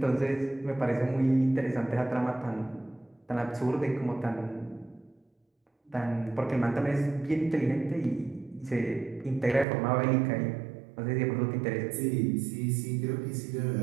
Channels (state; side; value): drops out; left; at 9.7 s